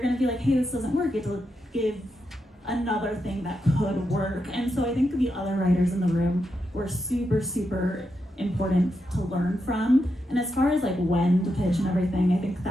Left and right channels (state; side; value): normal; both; correlation 0.85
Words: to be hey, this doesn't work, you have to give another thing that could work. And so I think the other writers in the room were super, super important to learn from. And as far as when to pitch and everything, I think